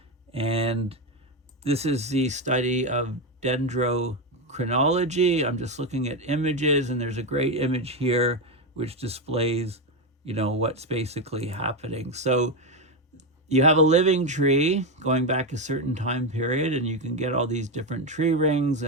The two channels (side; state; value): both; normal; correlation 0.10